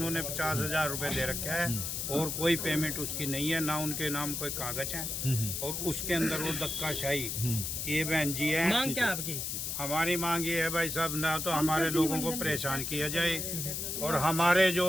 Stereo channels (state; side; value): noise; left; hiss, 3 dB below the sound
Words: 50,000 रुपए दे रखा है, और कोई पेमेंट उसकी नहीं है, ना उनके नाम कोई कागज है, और उसके अंदर वो धक्काशाही। ये बहन जी है। मांग क्या आपकी? हमारी मांग ये है भाई साहब, ना तो हमारे लोगों को परेशान किया जाए, और हमारे